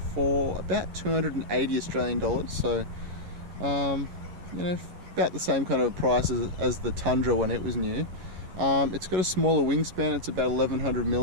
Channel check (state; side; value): late; left; 11 ms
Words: about 280 Australian dollars. So, you know, about the same kind of price as the Tundra when it was new. It's got a smaller wingspan. It's about 1100